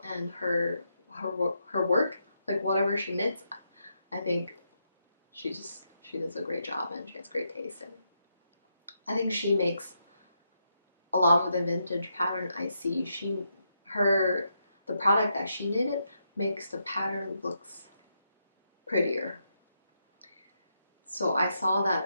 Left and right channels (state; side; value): inverted; both; correlation -0.81